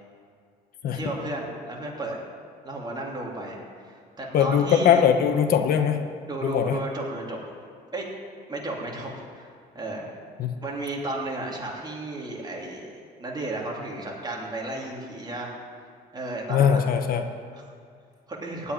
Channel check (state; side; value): quieter; right; 5.3 dB